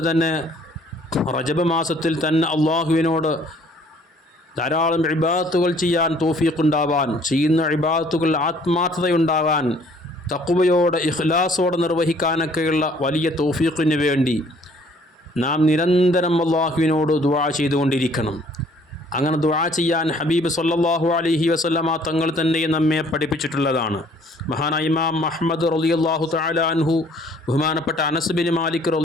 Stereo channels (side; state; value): both; normal; correlation 0.58